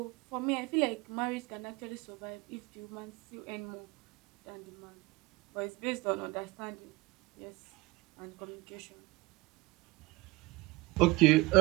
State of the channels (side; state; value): left; quieter; 21.8 dB